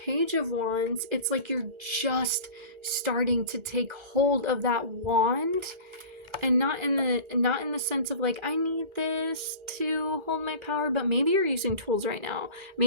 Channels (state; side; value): late; left; 1.3 ms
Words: of Wands, it's like you're just starting to take hold of that wand, and not in the sense of like, I need this to hold my power, but maybe you're using tools right now.